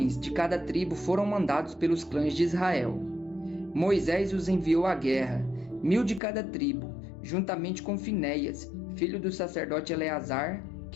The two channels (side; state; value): right; drops out; at 6.2 s